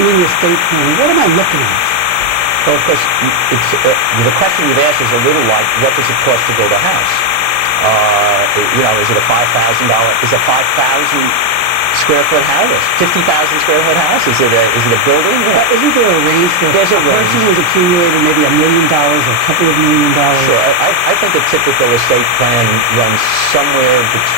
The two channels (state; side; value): late; left; 17 ms